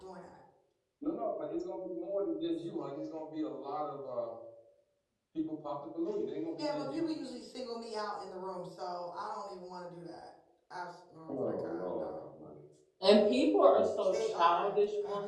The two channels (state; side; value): identical; both; correlation 1.00